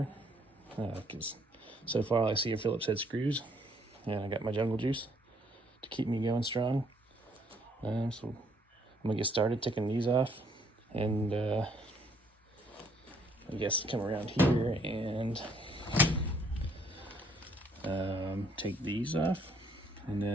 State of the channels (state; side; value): normal; both; correlation 0.66